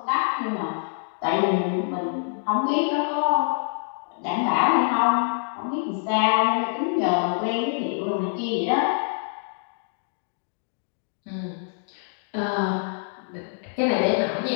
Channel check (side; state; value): right; silent; digital silence